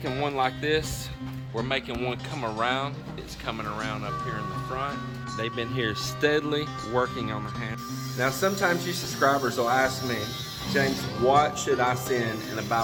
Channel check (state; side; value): identical; both; correlation 1.00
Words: one like this. We're making one come around. It's coming around up here in the front. They've been here steadily working on the hand. Now sometimes you subscribers will ask me, James, what should I send in a